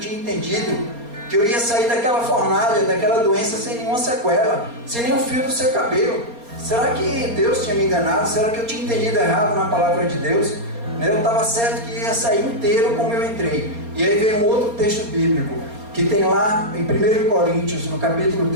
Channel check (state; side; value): late; left; 4.3 ms